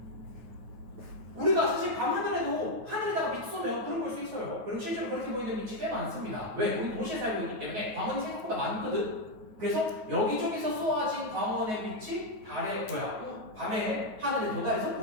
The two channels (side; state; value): left; late; 9.3 ms